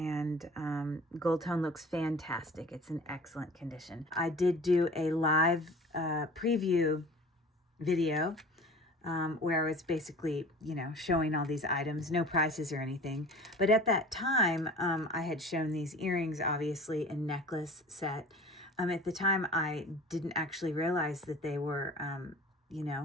gold tone looks fantastic. It's in excellent condition. I did do a live preview video where I was basically, showing all these items, no prices or anything. But at that time, I had shown these earrings, obviously, a necklace set. At the time, I didn't actually realize that they were,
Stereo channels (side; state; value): both; normal; correlation 0.42